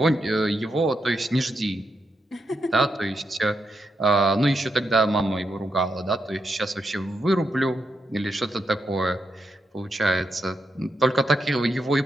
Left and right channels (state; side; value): normal; both; correlation 0.83